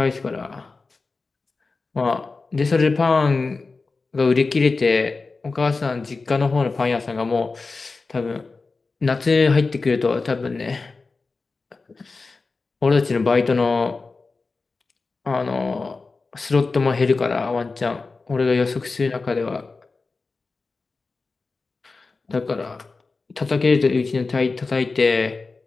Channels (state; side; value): quieter; right; 4.0 dB